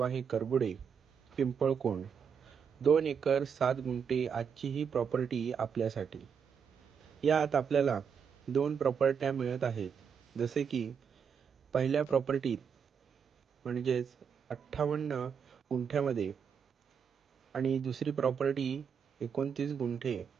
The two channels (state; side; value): quieter; left; 6.9 dB